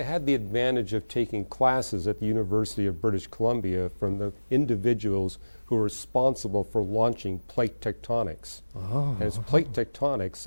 had the advantage of taking classes at the University of British Columbia from the individuals who are responsible for launching plate tectonics. And it's plate tectonics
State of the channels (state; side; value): inverted; both; correlation -1.00